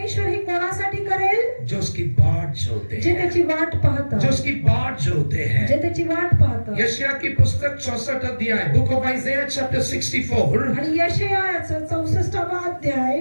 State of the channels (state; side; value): inverted; both; correlation -1.00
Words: हे कोणासाठी करेल? जो उसकी बाट जोते जे हैं, त्याची वाट पाहतात, जो उसकी बाट जोते हैं. जे त्याची वाट पाहतात. यशायाह की पुस्तक 64 अध्याय, बुक ऑफ आइज़ाया चैप्टर 64, आणि यशायाचं 64वा अध्याय